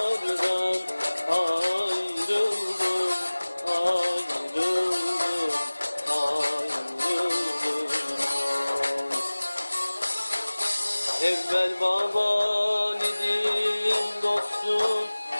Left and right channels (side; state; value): both; inverted; correlation -1.00